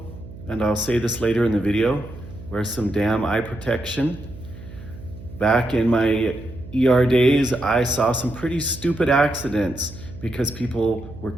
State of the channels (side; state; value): right; noise; hum, 15 dB below the sound